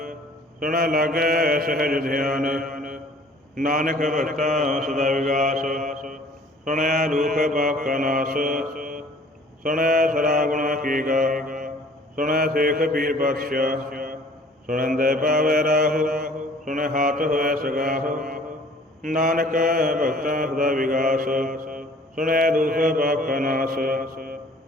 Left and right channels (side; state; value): both; normal; correlation 0.53